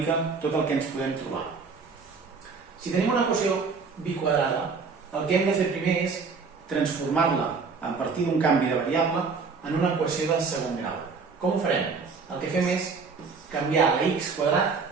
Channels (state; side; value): quieter; left; 4.9 dB